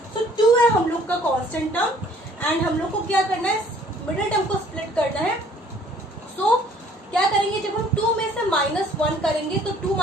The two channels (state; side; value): normal; both; correlation 0.57